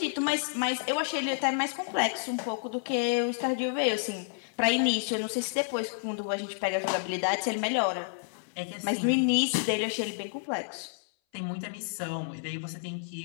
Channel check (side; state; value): right; silent; 58 dB below the other